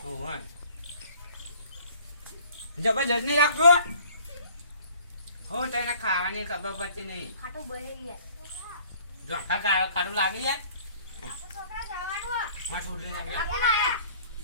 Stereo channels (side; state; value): both; inverted; correlation -0.53